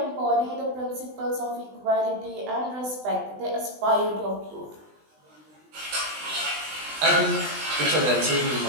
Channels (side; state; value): left; late; 20 ms